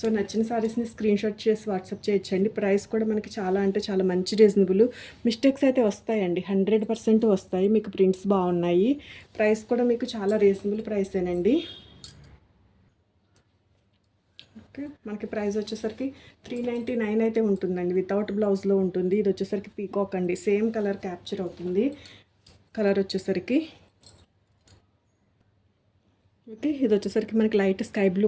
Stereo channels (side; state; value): both; identical; correlation 1.00